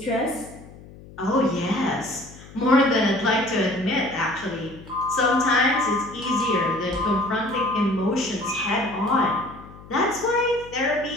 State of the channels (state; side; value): noise; left; hum, 19 dB below the sound